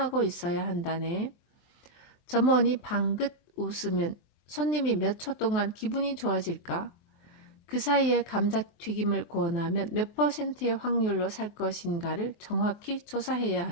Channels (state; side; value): late; right; 23 ms